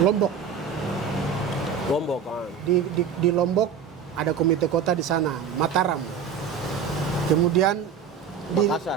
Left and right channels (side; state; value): left; quieter; 6.9 dB